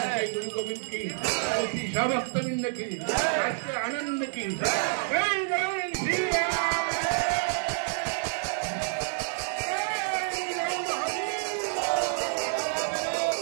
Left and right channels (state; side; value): silent; left; digital silence